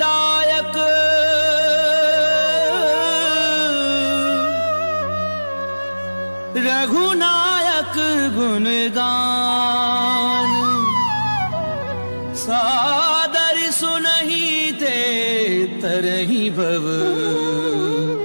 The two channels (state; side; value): inverted; both; correlation -1.00